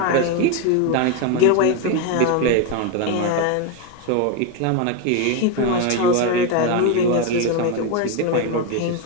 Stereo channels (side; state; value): both; different; correlation 0.02